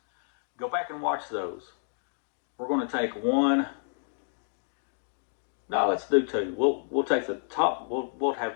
go back and watch those. We're going to take one. No, let's do two. We'll take the top. We'll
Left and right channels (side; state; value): right; silent; digital silence